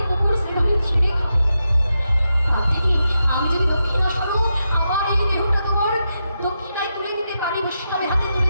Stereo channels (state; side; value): inverted; both; correlation -0.86